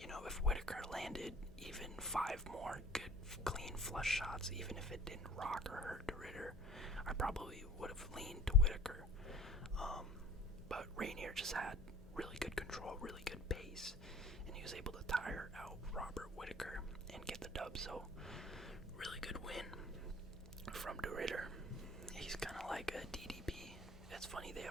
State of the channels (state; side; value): normal; both; correlation 0.48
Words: If Whittaker landed even 5 more good, clean flush shots, even if it didn't rock or hurt de Ridder, I probably would have leaned to Whittaker. But Rainier just had really good control, really good pace, and he was able to tire out Robert Whittaker and get the dub. So really good win from de Ridder. He's kind of like a DDP. It's funny, they